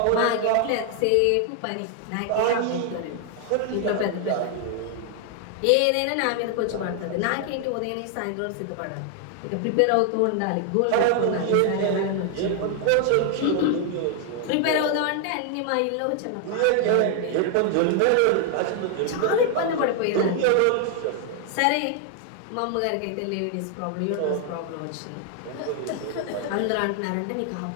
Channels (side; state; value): both; different; correlation 0.00